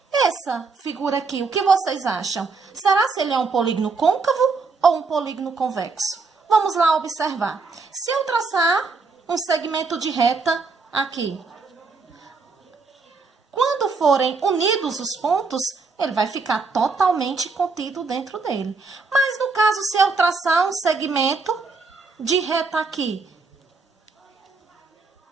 Essa figura aqui, o que vocês acham? Será se ele é um polígono côncavo ou um polígono convexo? Vamos lá observar. Se eu traçar um segmento de reta aqui, quando forem unidos os pontos, ele vai ficar totalmente contido dentro dele. Mas no caso, se eu traçar um segmento de reta aqui,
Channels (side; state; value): left; quieter; 4.3 dB